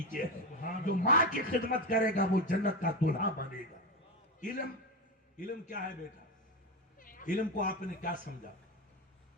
ہے۔ جو ماں کی خدمت کرے گا وہ جنت کا دلہا بنے گا۔ علم کیا ہے بیٹا؟ علم کو آپ نے کیا سمجھا؟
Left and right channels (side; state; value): both; normal; correlation 0.16